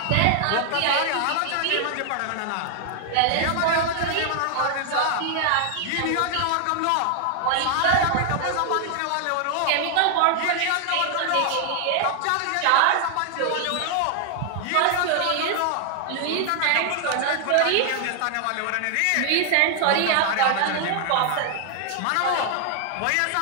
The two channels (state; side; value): different; both; correlation 0.00